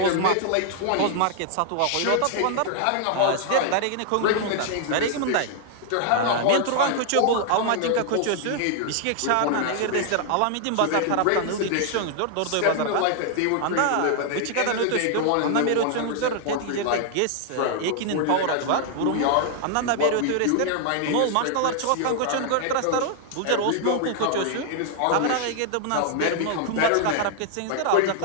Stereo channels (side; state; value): both; different; correlation 0.00